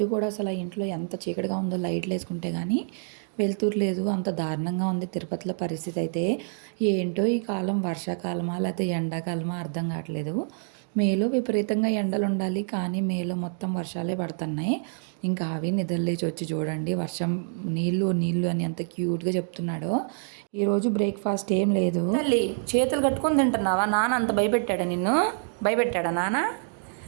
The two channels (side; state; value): left; silent; digital silence